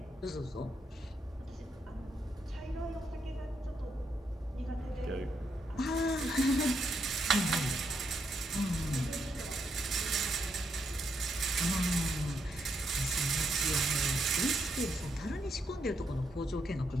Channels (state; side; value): normal; both; correlation 0.78